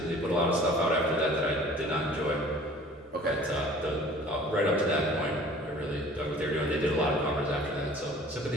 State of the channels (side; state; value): both; normal; correlation 0.48